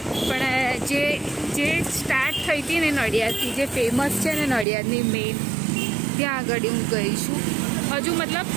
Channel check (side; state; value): left; drops out; at 4.7 s